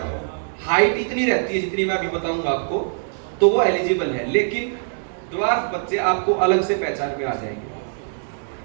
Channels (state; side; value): silent; left; digital silence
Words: हाइट इतनी रहती है जितनी मैं अभी बताऊंगा आपको, तो वो एलिजिबल है। लेकिन ड्वार्फ बच्चे आपको अलग से पहचान में आ जाएंगे।